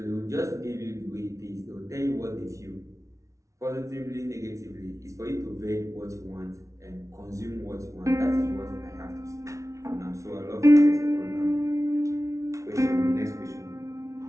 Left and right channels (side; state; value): left; late; 0.15 ms